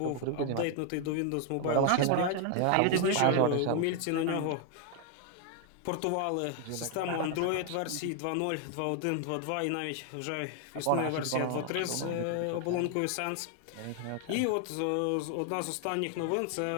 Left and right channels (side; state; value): both; different; correlation 0.00